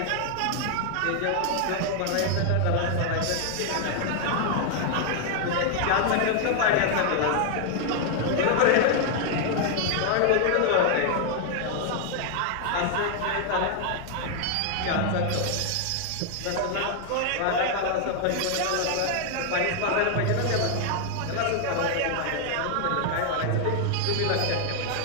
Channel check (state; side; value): different; both; correlation 0.00